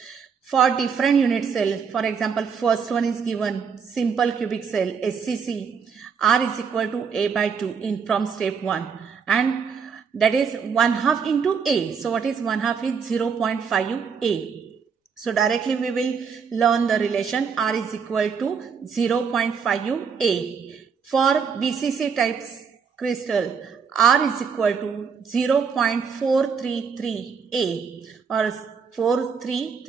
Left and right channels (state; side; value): quieter; left; 6.2 dB